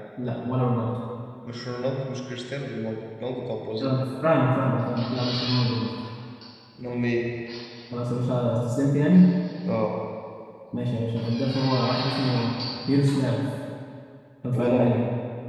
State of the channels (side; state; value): both; identical; correlation 1.00